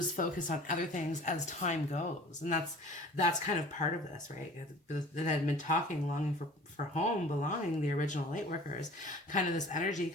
focus on other things as time goes. And that's kind of part of this, right? That I've been talking, longing for home, belonging, the original light workers, kind of this energy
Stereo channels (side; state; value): both; normal; correlation 0.45